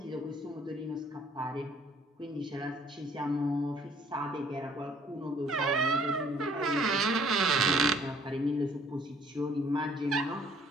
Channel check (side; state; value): both; normal; correlation 0.59